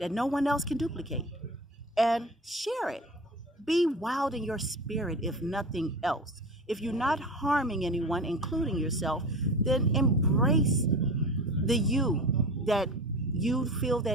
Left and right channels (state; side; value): normal; both; correlation 0.33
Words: no one else can duplicate and share it. Be wild in your spirit, if nothing else. If you're not harming anyone, including yourself, then embrace the you that you feel